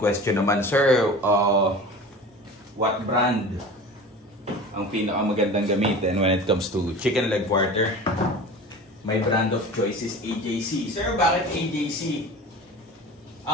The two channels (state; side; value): normal; both; correlation 0.37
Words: naman, sir, what brand ang pinakamagandang gamitin when it comes to chicken leg quarter? My brand of choice is AJC. Sir, bakit AJC?